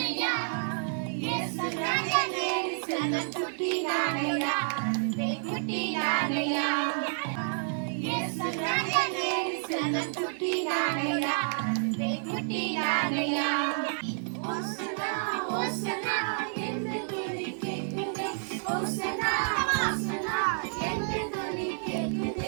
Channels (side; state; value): left; silent; digital silence